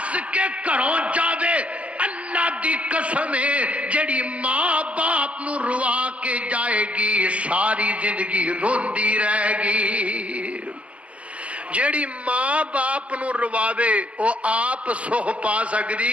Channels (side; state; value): left; late; 0.064 ms